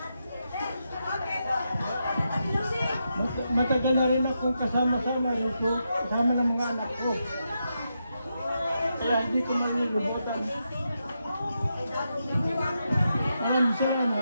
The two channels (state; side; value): inverted; both; correlation -0.84